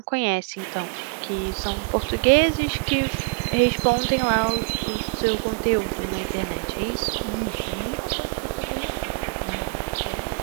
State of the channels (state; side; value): quieter; left; 32.4 dB